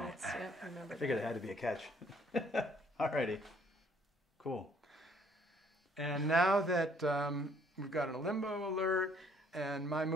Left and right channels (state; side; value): normal; both; correlation 0.63